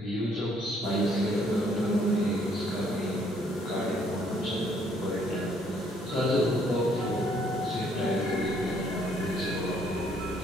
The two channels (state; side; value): normal; both; correlation 0.66